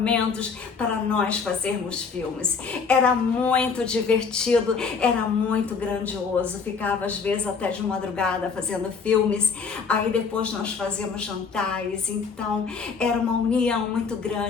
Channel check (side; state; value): right; quieter; 5.4 dB